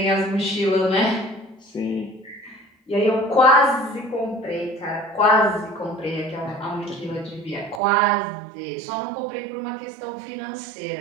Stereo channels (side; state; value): left; drops out; at 7.8 s